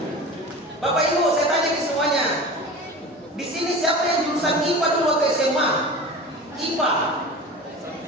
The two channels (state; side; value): normal; both; correlation 0.34